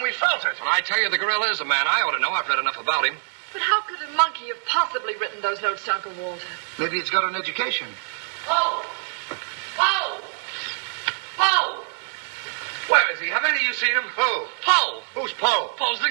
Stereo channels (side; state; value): left; silent; 62 dB below the other